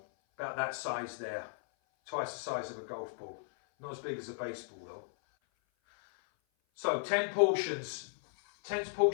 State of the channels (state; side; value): silent; right; 54 dB below the other